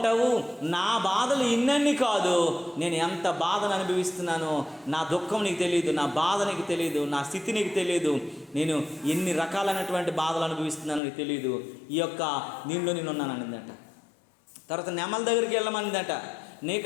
నా బాధలు ఇన్నన్నీ కాదు, నేను ఎంత బాధను అనుభవిస్తున్నానో నా దుఃఖం నీకు తెలియదు, నా బాధ నీకు తెలియదు, నా స్థితి నీకు తెలియదు, నేను ఎన్ని రకాలైనటువంటి బాధలు అనుభవిస్తున్నానో నీకు తెలియదు, ఈ యొక్క నీళ్ళు నేనున్నాను అనిందట. తర్వాత నెమల దగ్గరికి వెళ్ళమనిందట.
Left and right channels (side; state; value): right; drops out; at 11.0 s